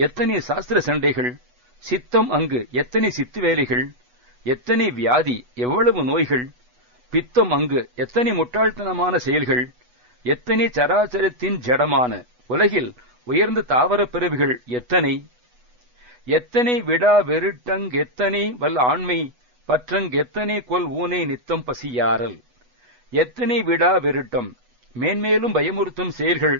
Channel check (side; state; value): left; late; 8.1 ms